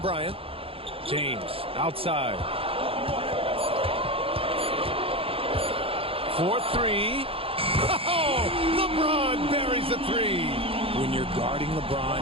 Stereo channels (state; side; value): late; left; 0.27 ms